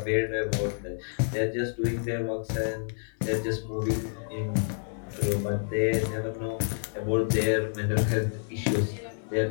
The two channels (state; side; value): silent; right; digital silence